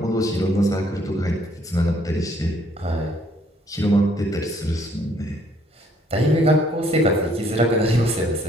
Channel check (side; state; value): both; normal; correlation 0.65